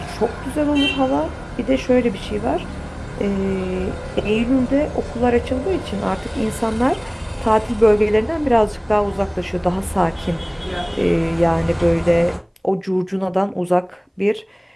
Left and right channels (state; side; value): identical; both; correlation 1.00